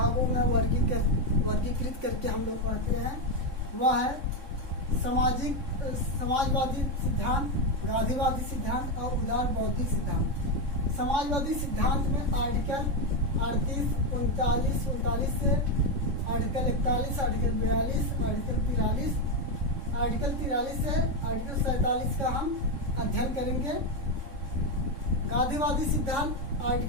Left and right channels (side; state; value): left; late; 3.7 ms